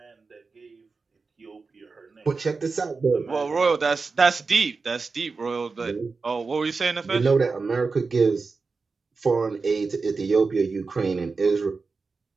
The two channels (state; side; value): quieter; left; 4.4 dB